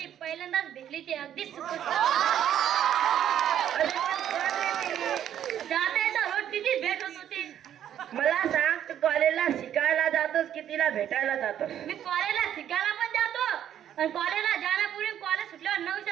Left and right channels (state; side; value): quieter; left; 10.4 dB